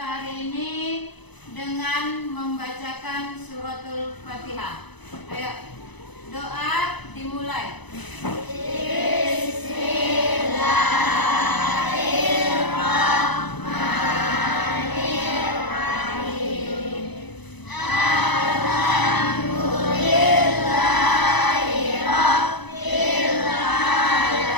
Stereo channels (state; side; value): late; right; 1.0 ms